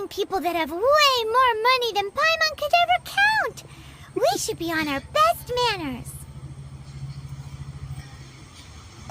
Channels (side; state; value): both; identical; correlation 1.00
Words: people that have way more money than Paimon could ever count. We should be on our best manners.